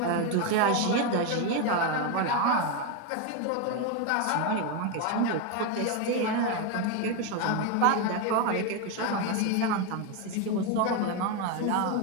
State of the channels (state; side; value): different; both; correlation 0.02